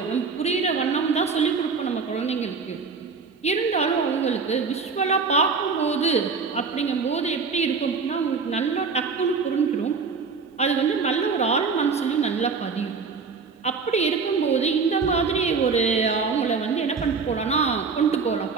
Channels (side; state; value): left; quieter; 5.0 dB